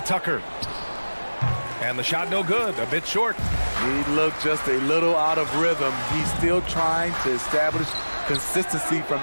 Tucker. And the shot no good. A bit short. He looked just a little out of rhythm. He's still trying to establish consistency from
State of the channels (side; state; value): both; inverted; correlation -1.00